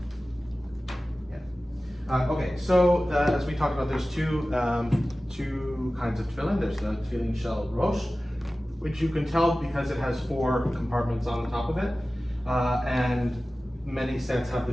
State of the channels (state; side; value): normal; both; correlation 0.96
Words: Okay, so as we talked about, there's two kinds of tefillin. There's the tefillin shel rosh, which you can tell because it has 4 compartments on the top of it, and many sets have